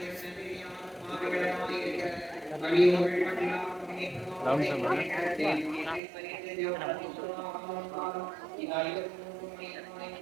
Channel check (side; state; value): left; drops out; at 6.0 s